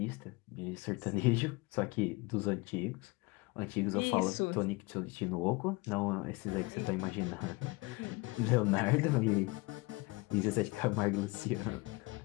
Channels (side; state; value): right; quieter; 24.9 dB